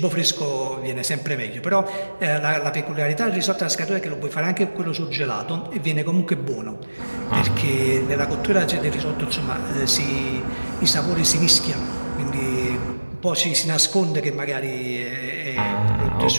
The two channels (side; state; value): both; inverted; correlation -1.00